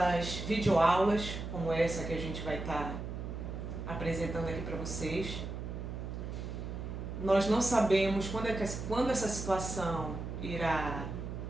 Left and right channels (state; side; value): noise; right; hum, 6 dB below the sound